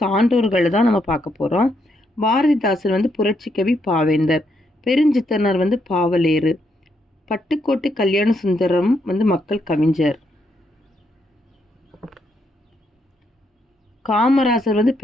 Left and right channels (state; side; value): normal; both; correlation 0.77